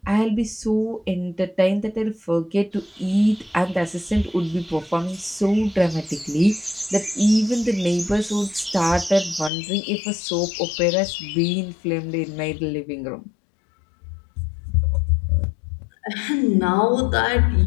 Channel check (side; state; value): right; drops out; at 9.5 s